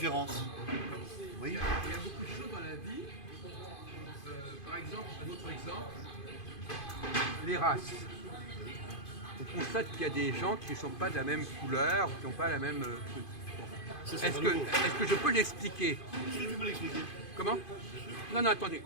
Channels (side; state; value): right; late; 2.5 ms